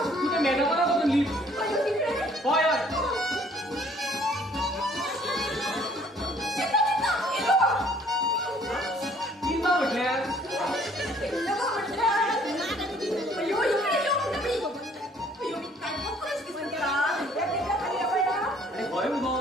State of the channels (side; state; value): both; normal; correlation 0.59